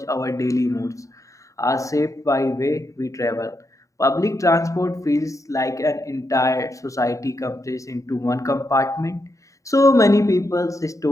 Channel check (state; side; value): late; right; 0.16 ms